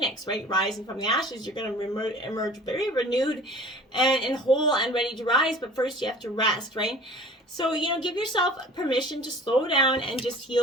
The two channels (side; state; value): both; normal; correlation 0.45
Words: right? Rising from the ashes, you're going to emerge very renewed and whole and ready to rise, but first you have to rest, right? So, give yourself permission to slow down and just